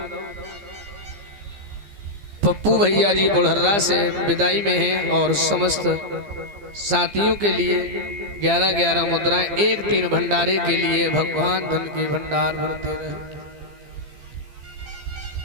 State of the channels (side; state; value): left; late; 15 ms